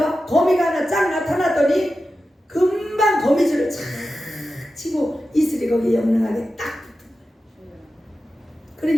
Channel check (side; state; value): both; normal; correlation 0.92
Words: 거미가 하나 쫙 나타나더니 금방 거미줄을 착 치고 이슬이 거기에 영롱하게 딱 붙은 거예요.